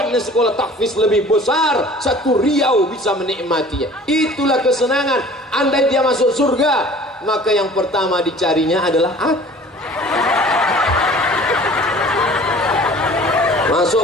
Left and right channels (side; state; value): both; normal; correlation 0.47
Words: sekolah tahfiz lebih besar, satu Riau bisa menikmatinya. Itulah kesenangan. Andai dia masuk surga, maka yang pertama dicarinya adalah aku. Masuk